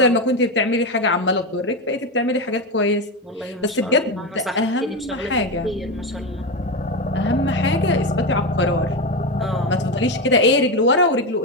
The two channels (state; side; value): normal; both; correlation 0.15